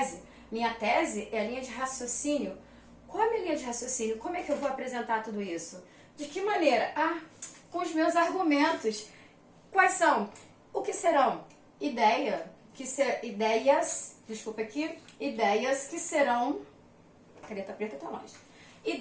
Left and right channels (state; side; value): identical; both; correlation 1.00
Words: Minha tese é a linha de raciocínio. Qual é a minha linha de raciocínio? Como é que eu vou apresentar tudo isso? De que maneira? Com os meus argumentos. Quais são? O que serão? Ideias que serão... Caneta preta tá longe.